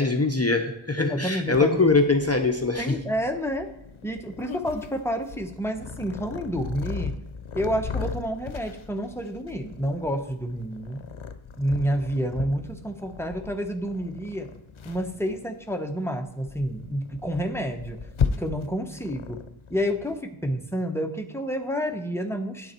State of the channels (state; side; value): normal; both; correlation 0.46